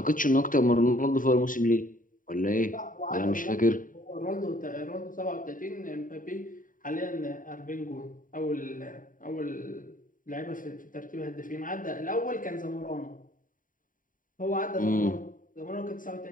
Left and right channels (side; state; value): right; late; 0.39 ms